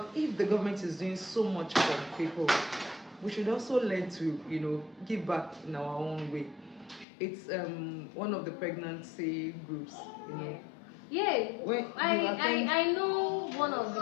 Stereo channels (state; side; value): drops out; right; at 7.1 s